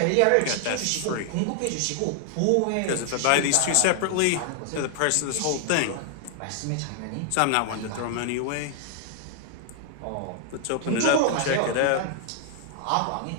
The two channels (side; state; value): both; different; correlation 0.00